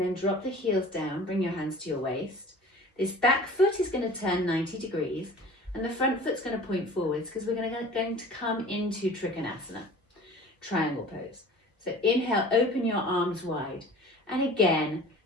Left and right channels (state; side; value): normal; both; correlation 0.43